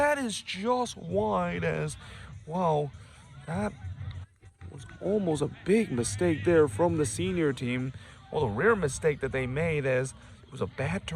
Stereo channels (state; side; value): identical; both; correlation 1.00